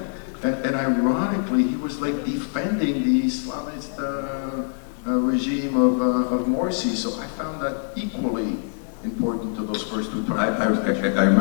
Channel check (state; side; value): silent; right; digital silence